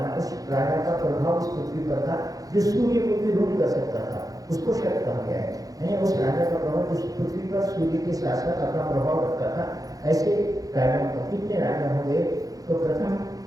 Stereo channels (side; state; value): left; late; 0.17 ms